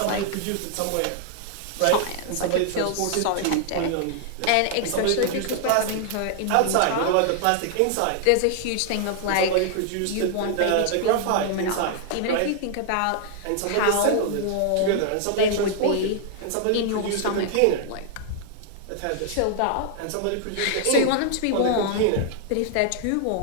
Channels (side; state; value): both; different; correlation 0.00